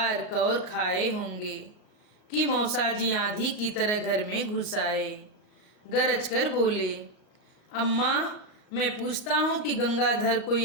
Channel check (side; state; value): right; late; 38 ms